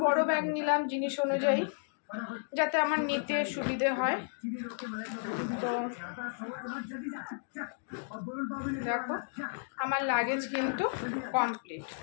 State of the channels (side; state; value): right; silent; digital silence